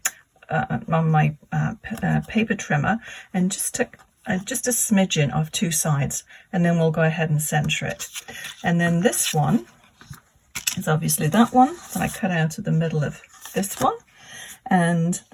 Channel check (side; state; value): both; identical; correlation 1.00